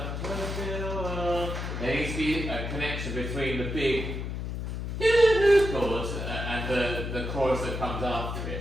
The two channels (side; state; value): left; noise; hum, 4 dB below the sound